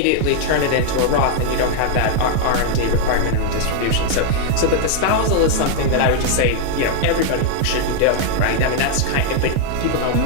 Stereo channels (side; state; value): both; different; correlation 0.00